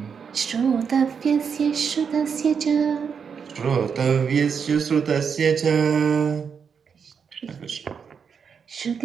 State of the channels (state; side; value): quieter; left; 6.5 dB